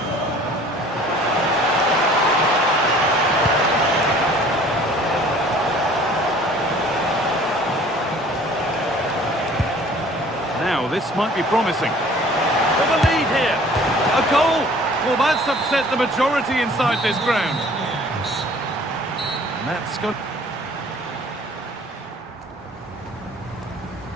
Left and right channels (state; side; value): normal; both; correlation 0.51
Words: Now, this might be promising. For the lead here. A goal! Well, that's upset the majority inside this ground. And that's good.